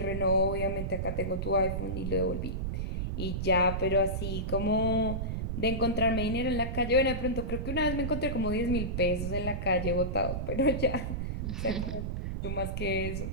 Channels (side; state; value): right; noise; rumble, 2 dB below the sound